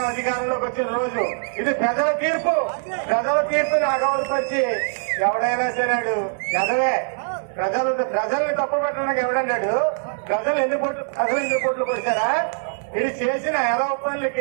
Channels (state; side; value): silent; left; digital silence